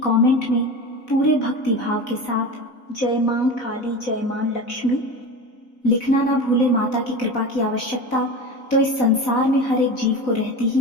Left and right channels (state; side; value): late; right; 4.0 ms